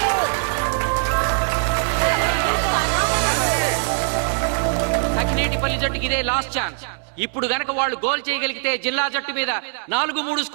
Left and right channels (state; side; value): silent; left; digital silence